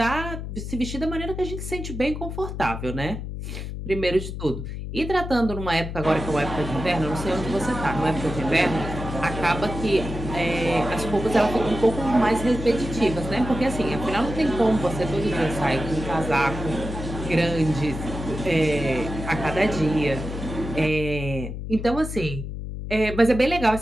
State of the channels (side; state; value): left; noise; hum, 7 dB below the sound